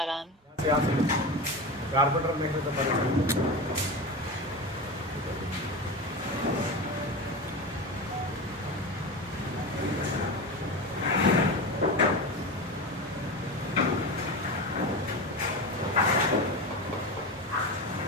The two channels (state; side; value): normal; both; correlation 0.23